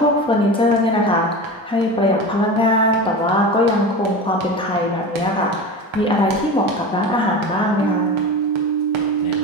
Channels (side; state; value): both; normal; correlation 0.28